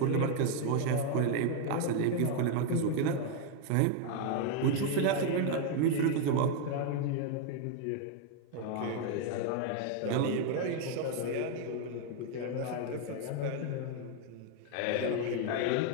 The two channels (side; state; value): both; different; correlation 0.00